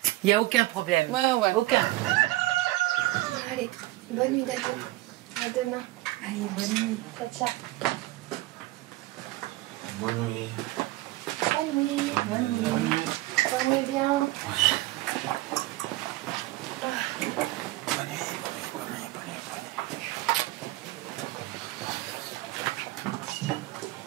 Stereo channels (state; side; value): quieter; left; 19.0 dB